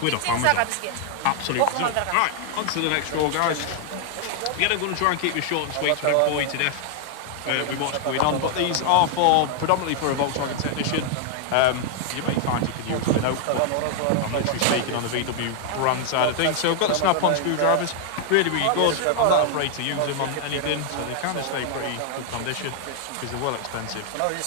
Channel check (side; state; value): both; different; correlation 0.00